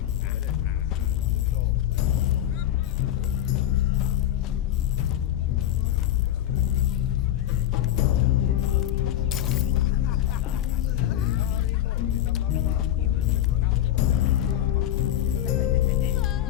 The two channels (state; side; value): quieter; right; 12.0 dB